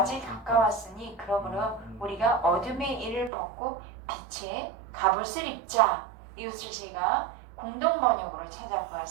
가까웠으니 그러므로 우리가 어둠의 일을 벗고 빛의 갑옷을 입자. 이것을 제가 공동 번역으로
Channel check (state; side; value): drops out; left; at 3.3 s